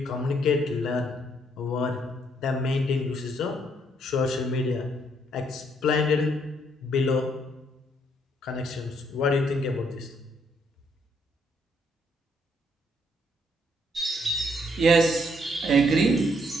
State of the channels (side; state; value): both; normal; correlation 0.70